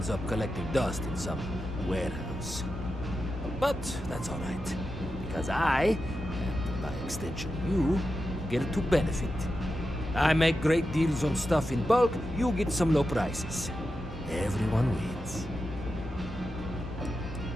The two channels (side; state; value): both; normal; correlation 0.90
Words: up collecting dust in some warehouse. But that's all right, because I, and by extension you, get to benefit. I make great deals on stuff in bulk, you get some low prices. Everyone wins.